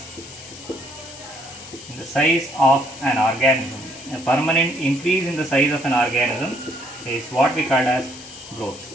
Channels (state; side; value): noise; left; hiss, 16 dB below the sound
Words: of an organism. A permanent increase in the size of an organism is what we call as growth.